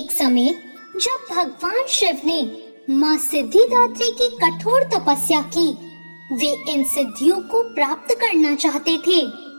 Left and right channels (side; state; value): both; inverted; correlation -1.00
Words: समय जब भगवान शिव ने माँ सिद्धिदात्री की कठोर तपस्या की, वे इन सिद्धियों को प्राप्त करना चाहते थे।